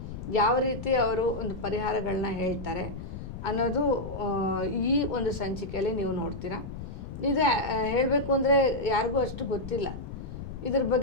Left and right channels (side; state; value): left; noise; rumble, 9 dB below the sound